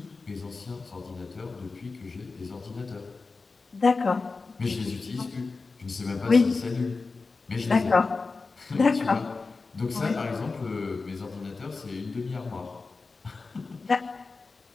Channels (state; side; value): quieter; right; 4.1 dB